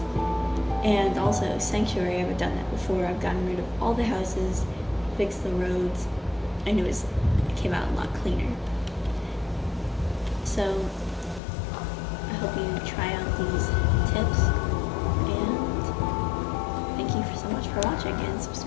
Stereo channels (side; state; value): right; drops out; at 11.4 s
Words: And also Sanctuary, I haven't done that before. I've gotten rid of all the houses, fixed the roads, and it came out a lot cleaner. So I hope you try out these tips, and thank you so much for watching, and